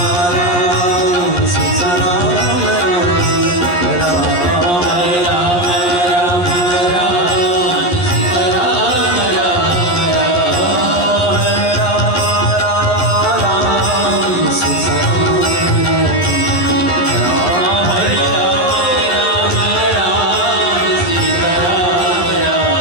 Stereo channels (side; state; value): right; late; 11 ms